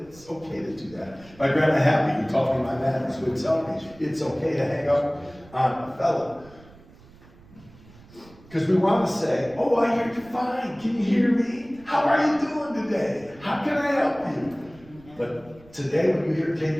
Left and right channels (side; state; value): right; noise; rumble, 24 dB below the sound